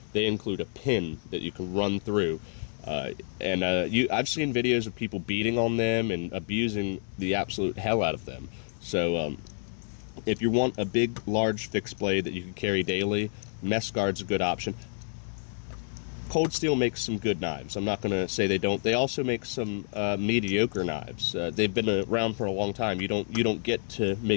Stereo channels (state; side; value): silent; right; digital silence